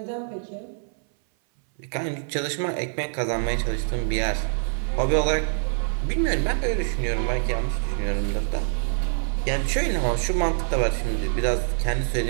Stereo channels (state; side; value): silent; left; 59 dB below the other